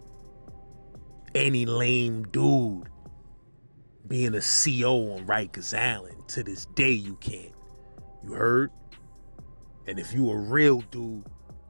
any lame dude being a CO on Rikers Island. To this day, you can't. You heard? And if you a real dude,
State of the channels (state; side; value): inverted; both; correlation -1.00